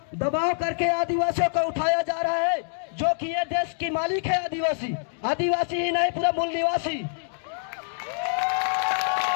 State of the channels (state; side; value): silent; right; digital silence